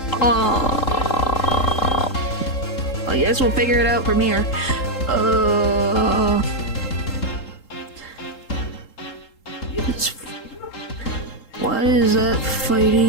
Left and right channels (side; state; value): right; late; 3.8 ms